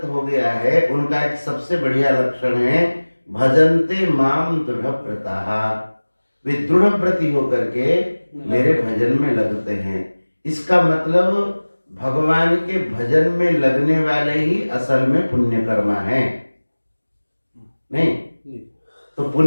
हो गया है उनका एक सबसे बढ़िया लक्षण है भजन्ते माम दृढ़व्रताः, वे दृढ़व्रती होकर के मेरे भजन में लगते हैं। इसका मतलब भगवान के भजन में लगने वाले ही असल में पुण्य कर्मा है। नहीं तो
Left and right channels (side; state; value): both; inverted; correlation -1.00